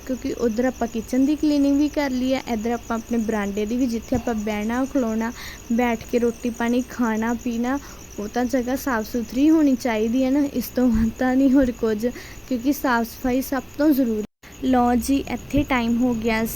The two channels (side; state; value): both; identical; correlation 1.00